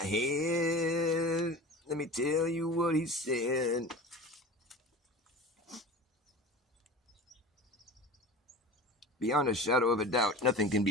let me tell you what he said. Beyond a shadow of a doubt, nothing can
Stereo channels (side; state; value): both; normal; correlation 0.35